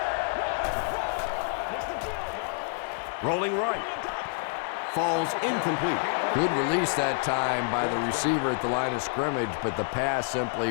Rolling right. Falls incomplete. Good release that time by the receiver at the line of scrimmage, but the pass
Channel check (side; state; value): right; quieter; 36.4 dB